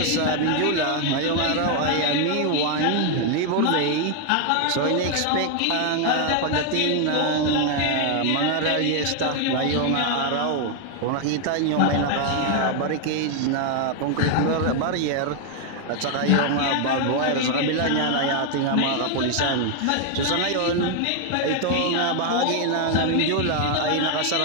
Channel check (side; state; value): both; different; correlation 0.00